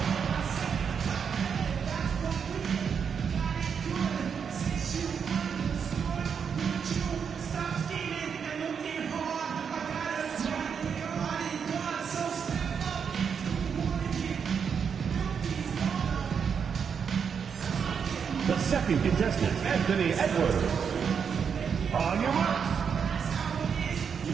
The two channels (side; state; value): left; quieter; 6.8 dB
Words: The second contestant, Anthony Edwards. On your marks.